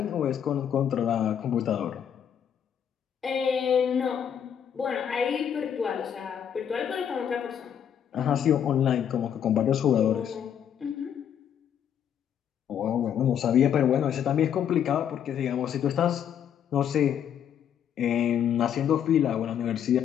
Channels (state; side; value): quieter; right; 8.9 dB